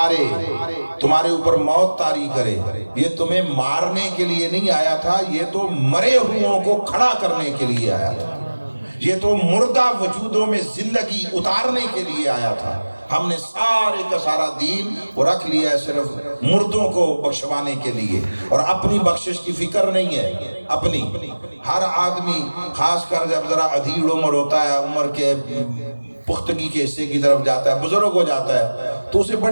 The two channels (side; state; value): both; inverted; correlation -1.00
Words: تمہارے اوپر موت طاری کرے، یہ تمہیں مارنے کے لیے نہیں آیا تھا، یہ تو مرے ہوئوں کو کھڑا کرنے کے لیے آیا تھا، یہ تو مردہ وجودوں میں زندگی اتارنے کے لیے آیا تھا۔ ہم نے سارے کا سارا دین وہ رکھ لیا ہے صرف مردوں کو بخشوانے کے لیے، اور اپنی بخشش کی فکر نہیں ہے۔ اپنی ہر آدمی، خاص کر جب ذرا ادھیڑ عمر ہوتا ہے، عمر کے پختگی کے حصے کی طرف جاتا ہے، بزرگ ہو جاتا ہے، تو اسے